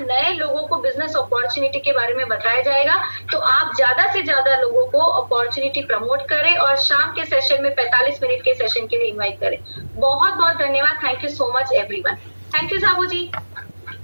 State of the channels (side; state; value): both; inverted; correlation -1.00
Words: लोगों को बिजनेस अपॉर्चुनिटी के बारे में बताया जाएगा। तो आप ज्यादा से ज्यादा लोगों को अपॉर्चुनिटी प्रमोट करें और शाम के सेशन में 45 मिनट के सेशन के लिए इन्वाइट करें। बहुत बहुत धन्यवाद। Thank you so much everyone. Thank you Sabu ji,